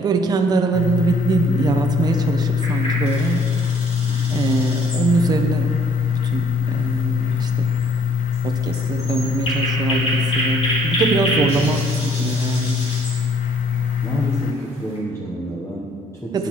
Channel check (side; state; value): both; normal; correlation 0.62